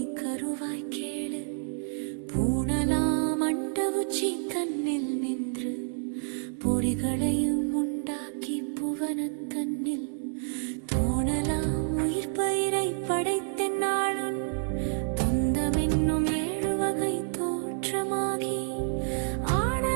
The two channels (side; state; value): left; silent; digital silence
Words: கருவாய் கேளு. பூணலாம் அண்ட உச்சி தன்னில் நின்று பொறிகளையும் உண்டாக்கி புவனன் தன்னில் தோணலாம் உயிர் பயிரை படைத்தென்னாளும் தொந்தமென்னும் 7 வகை தோற்றமாகி